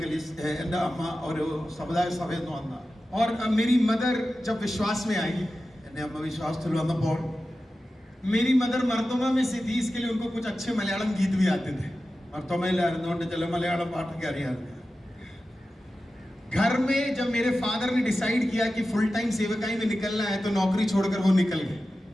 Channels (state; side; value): normal; both; correlation 0.94